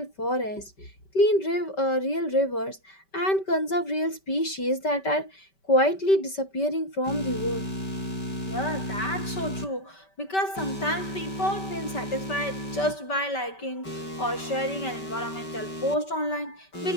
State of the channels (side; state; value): right; late; 5.2 ms